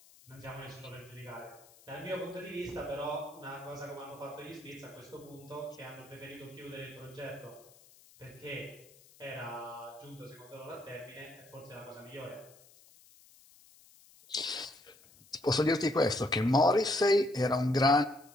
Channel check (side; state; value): left; noise; hiss, 25 dB below the sound